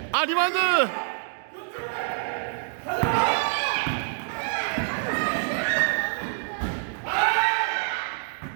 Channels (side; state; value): left; silent; digital silence